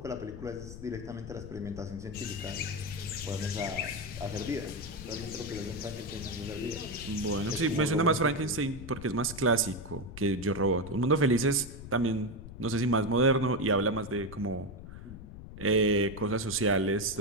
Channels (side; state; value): left; noise; rumble, 12 dB below the sound